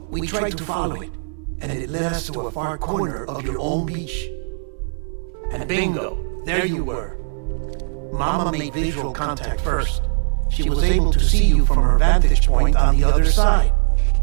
we tried to follow it, and it led us to a far corner of your own beach. And bingo, there you were. Mama made visual contact first. She was able to see you from her vantage point on the other side.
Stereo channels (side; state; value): left; silent; 63 dB below the other